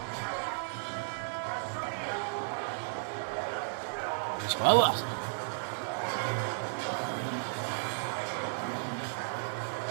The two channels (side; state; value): left; silent; digital silence